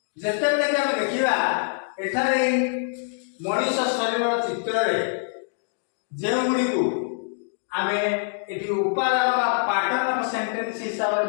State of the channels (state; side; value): silent; right; digital silence